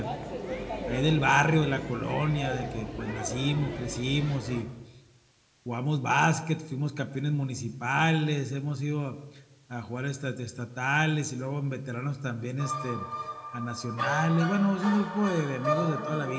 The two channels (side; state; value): both; identical; correlation 1.00